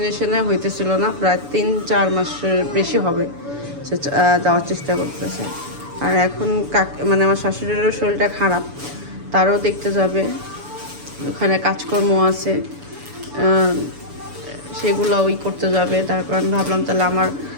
হইতেছিল না। প্রায় 3-4 মাসের বেশি হবে সে যাওয়ার চেষ্টা করতেছে। আর এখন মানে আমার শাশুড়িরও শরীরটা খারাপ, তারও দেখতে যাবে, ওখানে কাজকর্ম আছে, সেগুলো ওই করতে যাবে। তারপর আমি ভাবলাম তাহলে আমার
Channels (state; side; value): late; left; 7.0 ms